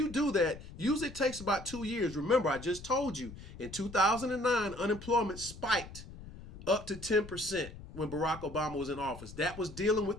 do that, usually it takes about 2 years. Remember, I just told you, in 2009, unemployment spiked up to 10% when Barack Obama was in office. That was dealing with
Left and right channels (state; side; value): noise; left; rumble, 14 dB below the sound